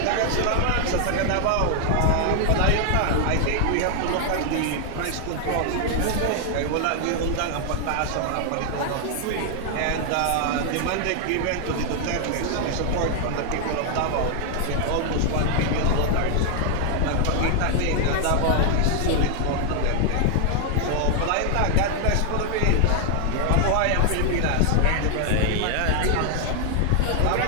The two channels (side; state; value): both; different; correlation 0.00